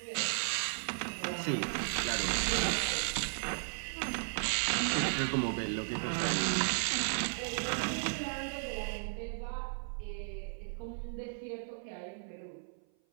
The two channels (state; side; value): silent; left; 54 dB below the other